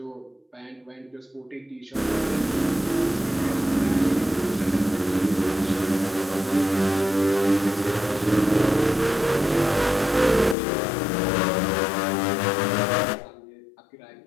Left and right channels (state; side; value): drops out; right; at 10.6 s